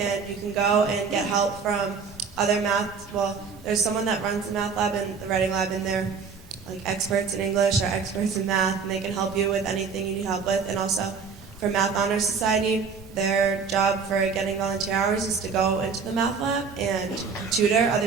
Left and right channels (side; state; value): left; quieter; 5.6 dB